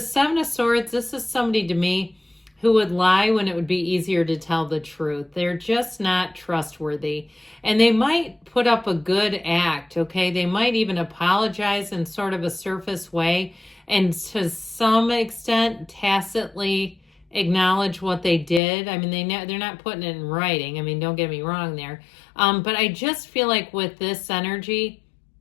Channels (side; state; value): right; drops out; at 18.6 s